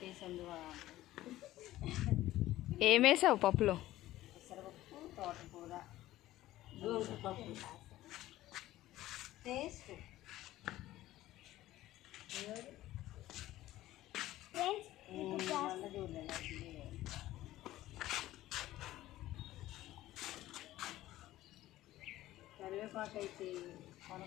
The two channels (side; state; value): right; quieter; 15.4 dB